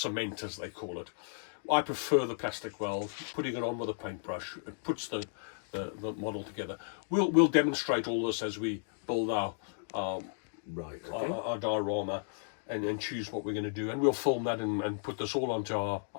as they call it. I prefer the plastic weld. Putting it on with a paintbrush, it puts the model together. We'll demonstrate all this as we build our diorama and choose what we're going to do, and we'll film that and put this all onto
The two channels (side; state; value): right; silent; digital silence